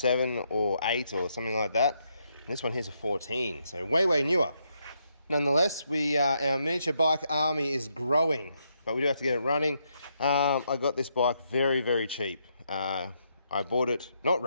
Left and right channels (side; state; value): both; inverted; correlation -0.78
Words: or 8 or something like that. And this one here's a 14, so way newer. Nonetheless, our miniature bike army is growing, but we do have to get it running. I got this bike very cheap. I bought it not